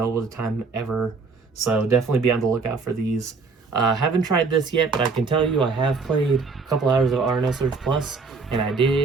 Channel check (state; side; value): quieter; left; 4.5 dB